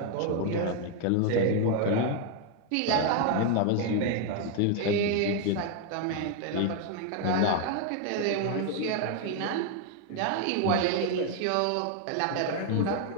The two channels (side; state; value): both; different; correlation 0.01